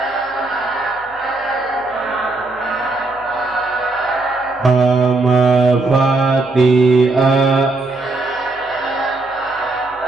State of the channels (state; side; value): quieter; left; 3.2 dB